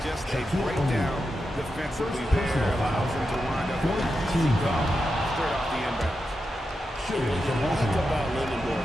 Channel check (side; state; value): both; normal; correlation 0.88